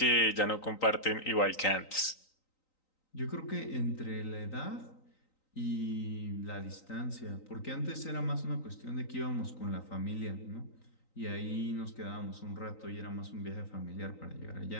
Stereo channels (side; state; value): right; late; 3.9 ms